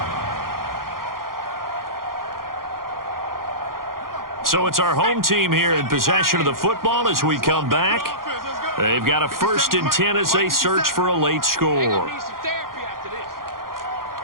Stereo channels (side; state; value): left; late; 0.92 ms